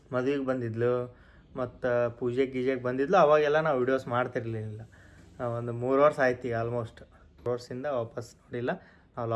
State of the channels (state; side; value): identical; both; correlation 1.00